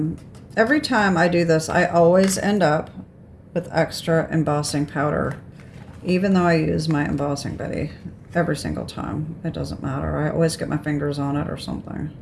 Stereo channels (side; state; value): both; identical; correlation 1.00